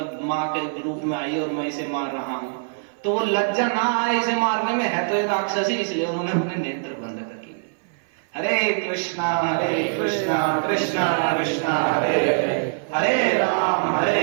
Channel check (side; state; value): left; silent; 57 dB below the other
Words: माँ के रूप में आई और मैं इसे मार रहा हूं। तो वो लज्जा ना आए इसे मारने में, है तो एक राक्षसी, इसलिए उन्होंने अपने नेत्र बंद कर लिए। हरे कृष्णा कृष्णा कृष्णा हरे हरे राम